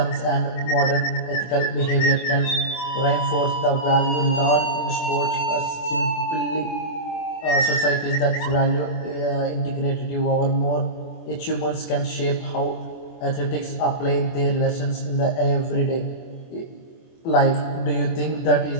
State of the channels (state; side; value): late; right; 24 ms